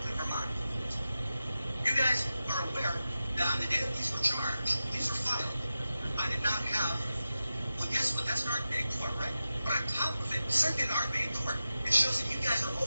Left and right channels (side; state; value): both; inverted; correlation -0.92